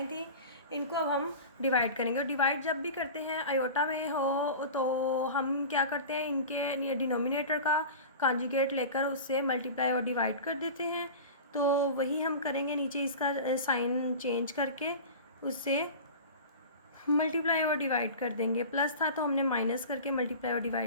थी, इनको अब हम डिवाइड करेंगे। और डिवाइड जब भी करते हैं अयोटा में हो तो हम क्या करते हैं, इनके डिनोमिनेटर का कांजुगेट लेकर उससे मल्टीप्लाई और डिवाइड कर देते हैं। तो वही हम करेंगे, नीचे इसका साइन चेंज करके उससे मल्टीप्लाई और डिवाइड कर देंगे। प्लस था तो हमने माइनस करके मल्टीप्लाई और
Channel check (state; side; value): inverted; both; correlation -0.33